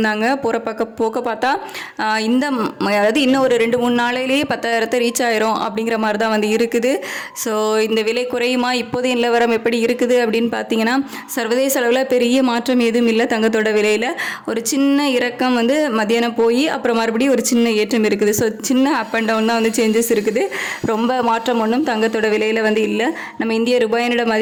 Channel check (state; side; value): identical; both; correlation 1.00